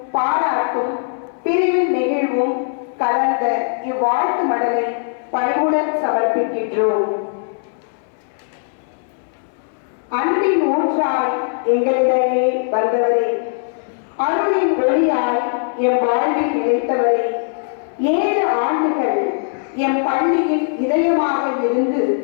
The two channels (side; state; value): right; silent; 66 dB below the other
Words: பாராட்டும் பிரிவின் நெகிழ்வும் கலந்த இவ்வாழ்த்து மடலை பணிவுடன் சமர்ப்பிக்கின்றோம். அன்பின் ஊற்றாய் எங்களிடையே வந்தவரே, அருளின் ஒளியாய் எம் வாழ்வில் நிலைத்தவரே, 7 ஆண்டுகள் எம் பள்ளியின் இதயமாக இருந்து